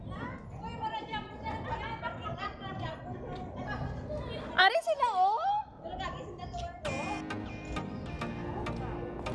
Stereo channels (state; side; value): identical; both; correlation 1.00